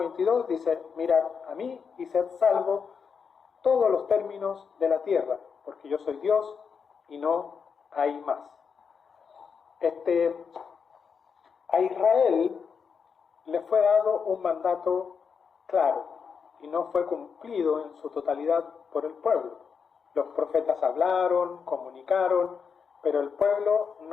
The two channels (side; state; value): right; quieter; 6.1 dB